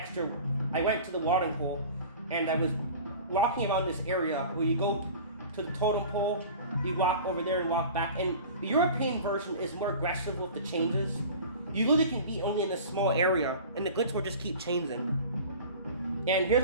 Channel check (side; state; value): both; inverted; correlation -0.38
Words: I went to the watering hole and I was walking around this area where you go to the totem pole, you walk over there and walk back. And the European version is more aggressive with the changes. You really can be only in a small area and the glitch will just keep changing. And here's